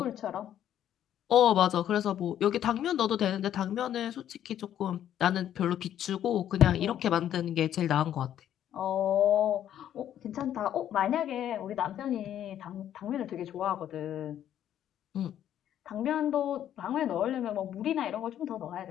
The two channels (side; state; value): right; quieter; 10.8 dB